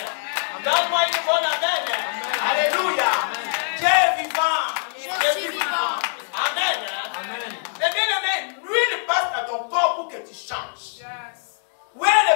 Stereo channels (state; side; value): silent; right; digital silence